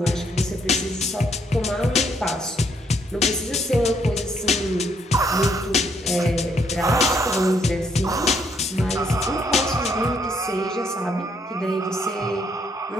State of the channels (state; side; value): normal; both; correlation 0.71